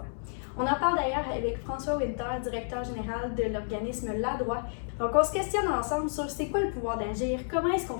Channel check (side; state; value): right; silent; 58 dB below the other